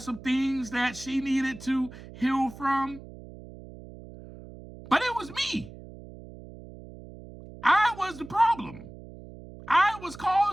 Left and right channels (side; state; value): right; noise; hum, 16 dB below the sound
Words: some things that she needed to heal from. But it was me. I was the problem. I was